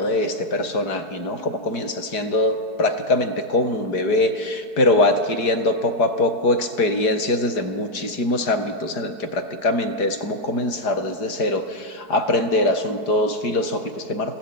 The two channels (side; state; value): right; late; 4.6 ms